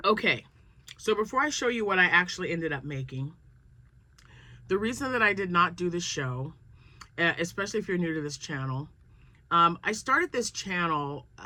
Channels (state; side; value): identical; both; correlation 1.00